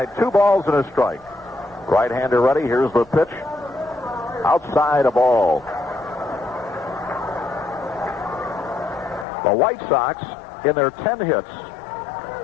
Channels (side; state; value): right; drops out; at 9.2 s